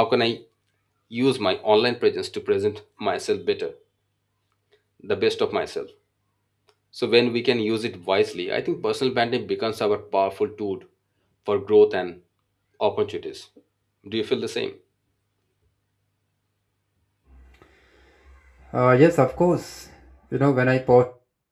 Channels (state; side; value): identical; both; correlation 1.00